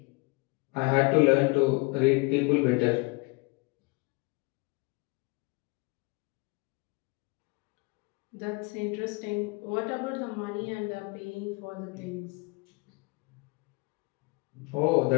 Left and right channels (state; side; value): quieter; right; 27.2 dB